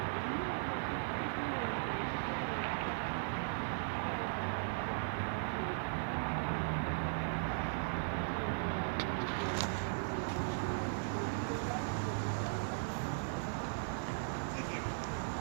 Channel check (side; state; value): left; silent; digital silence